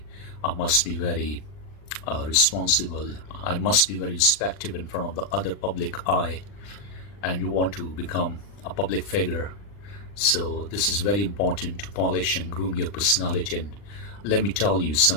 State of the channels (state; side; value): late; right; 40 ms